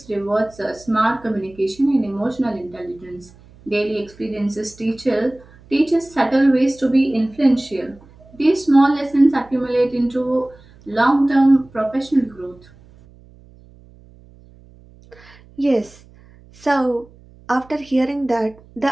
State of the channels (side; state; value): right; noise; hum, 25 dB below the sound